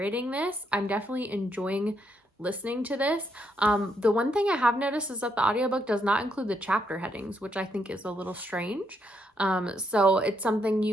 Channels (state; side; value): normal; both; correlation 0.77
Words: this. I'm definitely enjoying listening to this. The one thing I have noticed is that the audiobook does not include the chapter headings, which I think is a little strange. So it's something